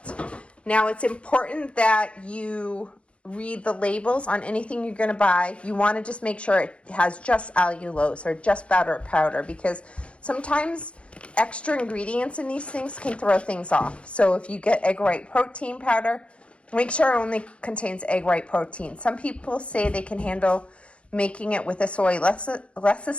Now, it's important that you read the labels on anything you're going to buy. You want to just make sure it has just allulose or just butter powder, because sometimes extra ingredients in these things can throw things off. So if you get egg white protein powder, make sure it only contains egg white protein. Some people say they can handle making it with a soy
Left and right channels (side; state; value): right; late; 0.060 ms